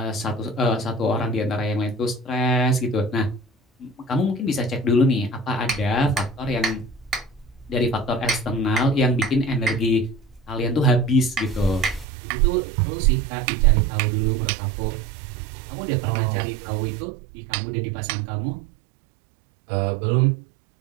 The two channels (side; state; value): left; drops out; at 12.1 s